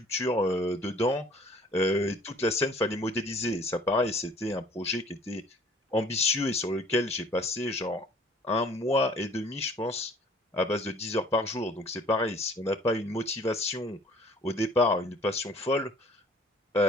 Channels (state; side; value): normal; both; correlation 0.54